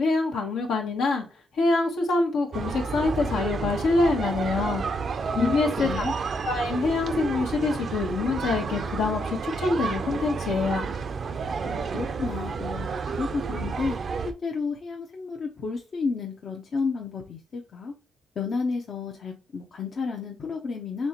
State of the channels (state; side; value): normal; both; correlation 0.78